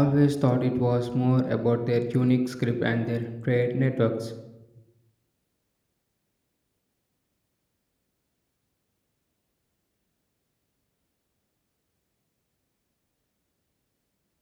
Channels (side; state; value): both; identical; correlation 1.00